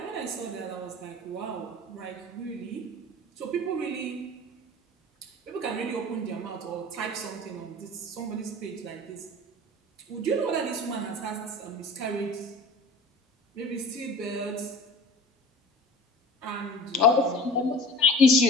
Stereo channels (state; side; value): normal; both; correlation 0.40